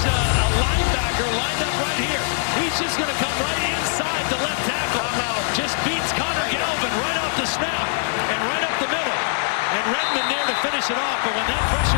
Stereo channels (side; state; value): right; silent; digital silence